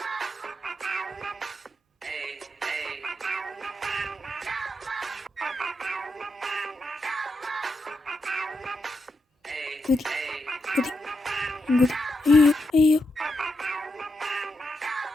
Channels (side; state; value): both; normal; correlation 0.84